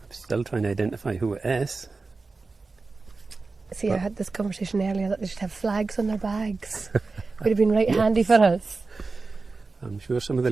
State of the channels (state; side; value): quieter; left; 3.9 dB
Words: I'm still trying to identify who it is. See, I had this conversation earlier that they should have flags on their bags. Would have been right handy for us. I'm sure some of the